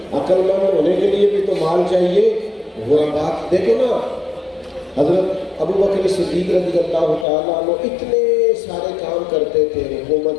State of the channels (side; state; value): right; drops out; at 7.2 s